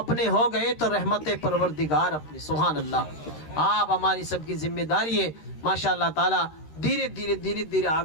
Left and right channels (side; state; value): right; late; 13 ms